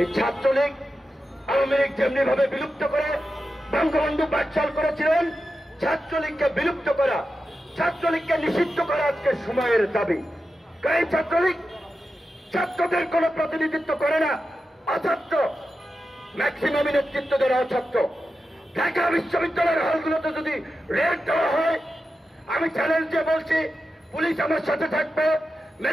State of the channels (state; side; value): normal; both; correlation 0.91